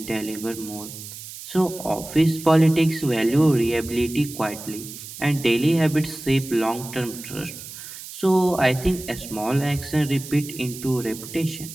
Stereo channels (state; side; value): noise; right; hiss, 13 dB below the sound